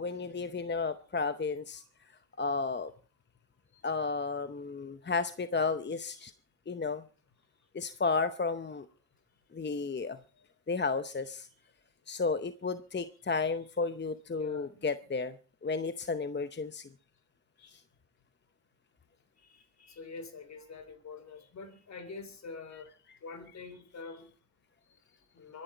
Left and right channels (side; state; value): right; quieter; 4.0 dB